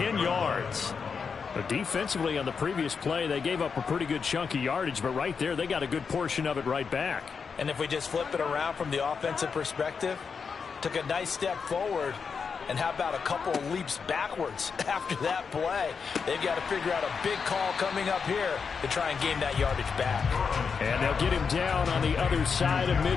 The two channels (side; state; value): right; quieter; 5.8 dB